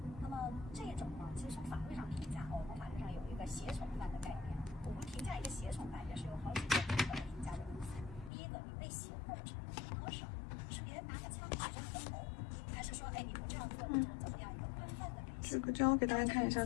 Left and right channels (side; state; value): right; drops out; at 8.3 s